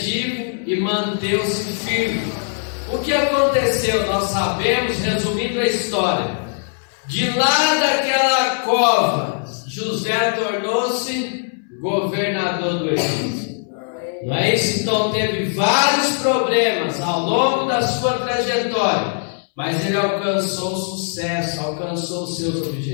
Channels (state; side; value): silent; right; 66 dB below the other